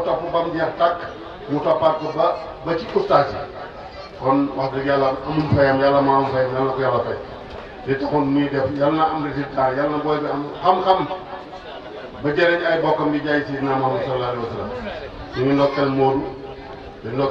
topp ba mu jeex tàkk mu toppaat ko ba ci ustaas yi kon wax dëgg yàlla amul fayam yàlla maa am fayam yàlla na ko yàlla fay li taxoon muy def yàlla na am résultat yàlla na booy bi am xam-xam ba jëriñ ay bokkam di jaay Sidina Muhammad sallallahu alayhi wa sallam ñu ngi ndokkeel Moodu di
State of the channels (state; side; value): identical; both; correlation 1.00